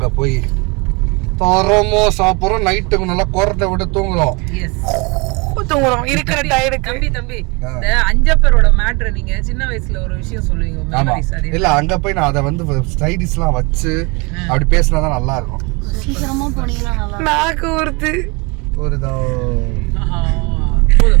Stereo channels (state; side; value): quieter; left; 28.7 dB